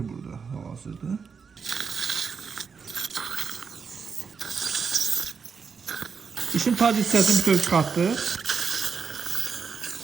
burada hal-hazırda. Dişin tac hissəsini bütöv çıxartdıq.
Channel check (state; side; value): quieter; left; 5.8 dB